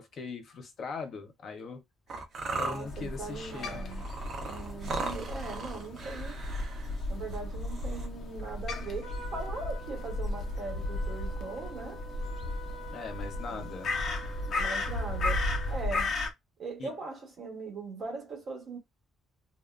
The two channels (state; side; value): normal; both; correlation 0.68